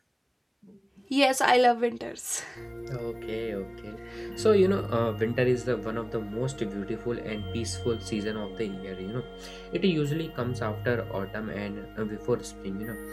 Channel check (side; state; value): both; identical; correlation 1.00